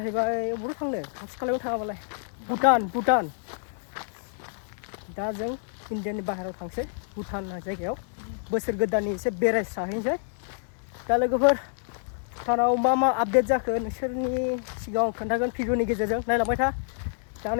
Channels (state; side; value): silent; right; digital silence